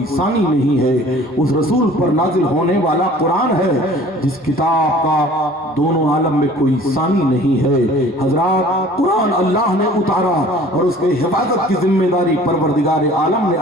सानी नहीं है। उस रसूल पर नाजिल होने वाला कुरान है जिस किताब का दोनों आलम में कोई सानी नहीं है। हजरात, कुरान अल्लाह ने उतारा और उसके हिफाजत की जिम्मेदारी परवरदिगार आलम ने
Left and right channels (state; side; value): normal; both; correlation 0.49